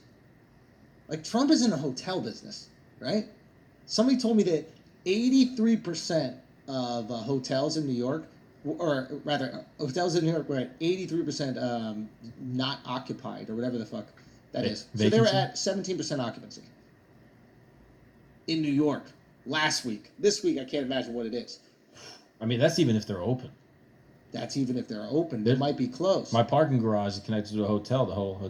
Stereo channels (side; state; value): both; identical; correlation 1.00